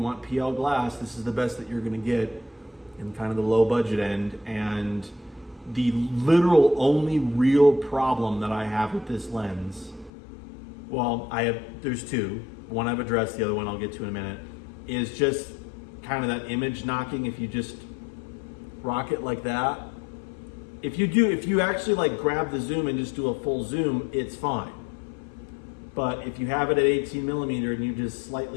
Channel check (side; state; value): right; drops out; at 10.1 s